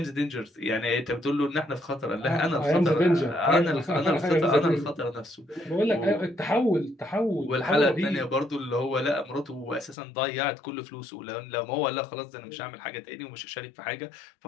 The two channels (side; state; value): right; drops out; at 10.0 s